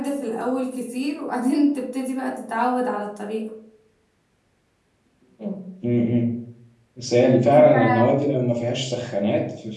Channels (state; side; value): identical; both; correlation 1.00